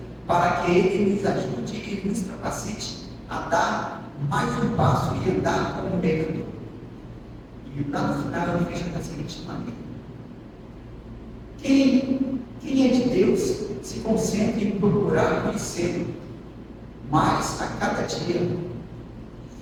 para que Ele nos ajude e nos capacite a dar mais um passo e andar como um merecedor. E lá no final ele fecha da seguinte maneira: quem é de Deus se concentra em procurar conhecê-lo mais a cada dia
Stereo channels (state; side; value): identical; both; correlation 1.00